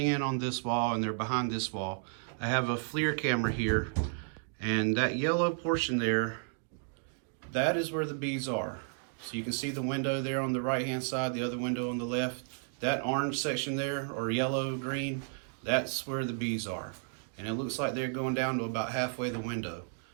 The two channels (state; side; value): silent; left; 56 dB below the other